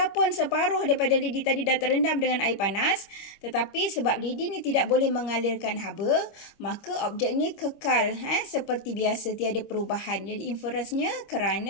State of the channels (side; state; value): right; late; 26 ms